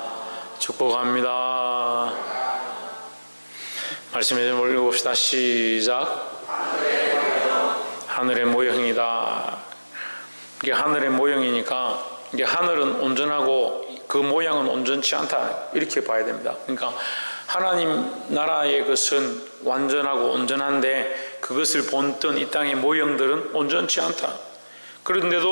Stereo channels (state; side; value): inverted; both; correlation -1.00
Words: 축복합니다. 말씀에 좀 올려봅시다. 시작. 하늘의 모형이다. 이게 하늘의 모형이니까 이게 하늘은 온전하고 그 모양은 온전치 않다, 이렇게 봐야 됩니다. 그러니까 하나님 나라의 것은 완전하고 온전한데 그것을 본뜬 이 땅의 모형들은 온전치 않다.